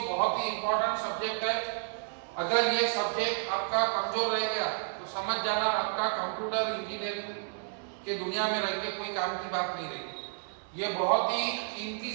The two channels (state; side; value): silent; left; digital silence